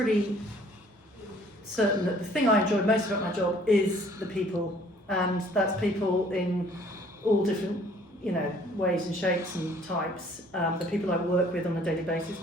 certain that the thing I enjoy most about my job is the people, and that's people in all different, ways and shapes and types. The people I work with on a daily basis,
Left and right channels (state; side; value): normal; both; correlation 0.57